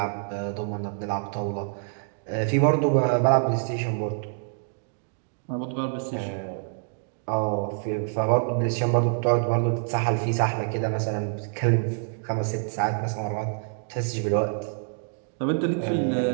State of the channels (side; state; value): left; silent; 61 dB below the other